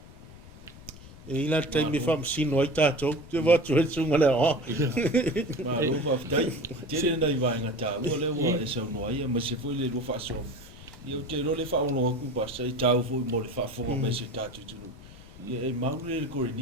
E ila taimi whamasino ai tātou, te watu e sunga le o. Ma lo whaftai, tere nei vaenga tā, ua le ua e sau noa ia, ma se fwoi le lua whaasong. Ia te ro le whaono aku basa, I tāu fwoi mo le whaafonga me se tātou tunu. Ia e maule le kore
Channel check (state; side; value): noise; left; rumble, 19 dB below the sound